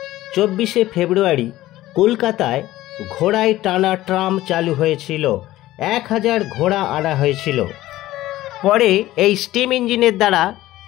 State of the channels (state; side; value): quieter; right; 15.8 dB